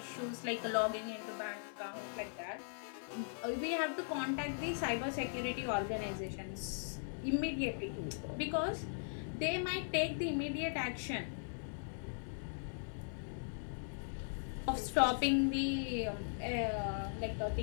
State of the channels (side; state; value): right; silent; digital silence